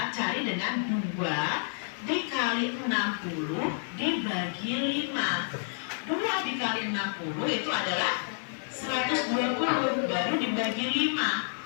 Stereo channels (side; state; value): right; silent; 58 dB below the other